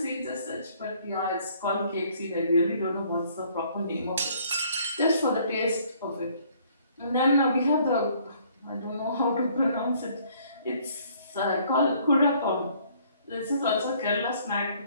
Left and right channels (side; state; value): both; inverted; correlation -0.61